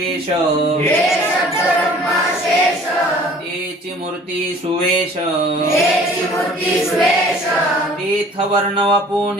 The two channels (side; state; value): both; normal; correlation 0.50